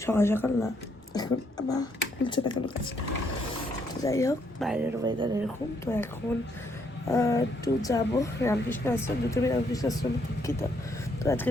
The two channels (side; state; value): both; normal; correlation 0.72